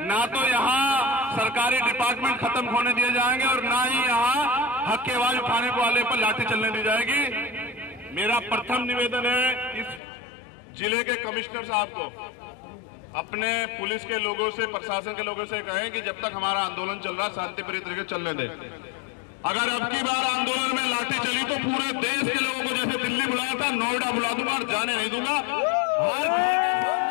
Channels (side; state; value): right; drops out; at 10.0 s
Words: ना तो यहाँ सरकारी डिपार्टमेंट खत्म होने दिए जाएंगे और ना ही यहाँ हक की आवाज उठाने वाले पर लाठी चलने दी जाएगी। मेरा प्रथम निवेदन है इस जिले के कमिश्नर साहब को, अपने पुलिस के लोगों से, प्रशासन के लोगों से कहें कि जब तक हमारा आंदोलन चल रहा है शांतिप्रिय तरीके चलने दें। अगर अब की बार आंदोलन में लाठी चली तो पूरे देश के लोगों को जैसे दिल्ली बुलाया था नोएडा बुला दूंगा और जाने नहीं दूंगा।